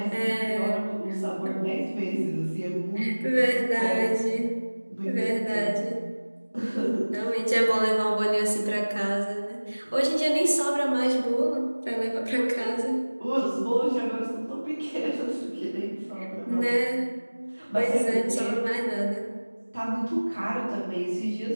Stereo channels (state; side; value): inverted; both; correlation -1.00